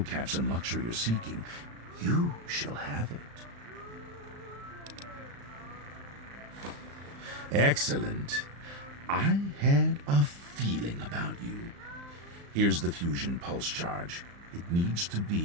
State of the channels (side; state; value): left; late; 35 ms